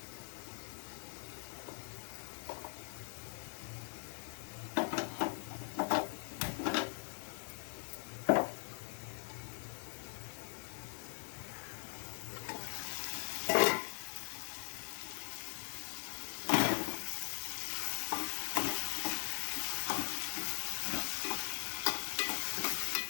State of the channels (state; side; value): silent; right; 51 dB below the other